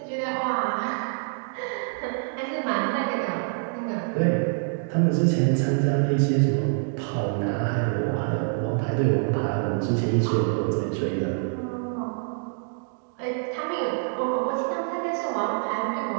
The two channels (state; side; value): silent; left; digital silence